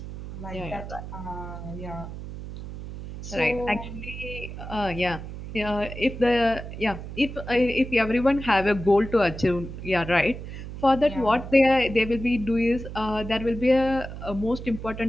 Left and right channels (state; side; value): noise; right; hum, 10 dB below the sound